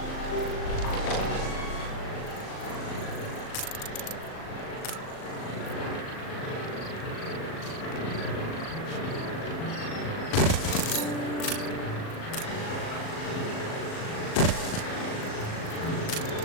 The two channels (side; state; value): right; late; 38 ms